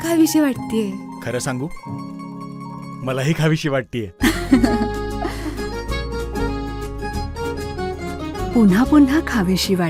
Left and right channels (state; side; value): identical; both; correlation 1.00